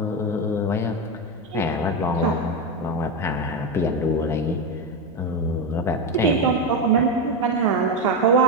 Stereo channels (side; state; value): right; noise; hum, 27 dB below the sound